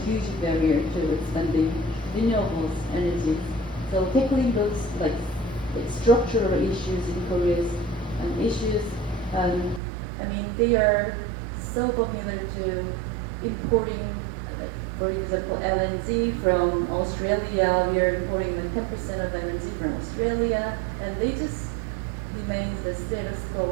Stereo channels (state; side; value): drops out; left; at 9.8 s